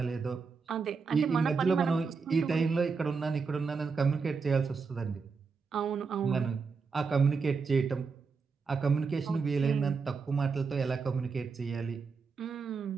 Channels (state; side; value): quieter; left; 5.0 dB